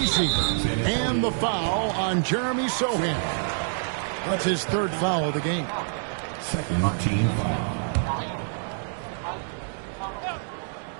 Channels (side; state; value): left; silent; digital silence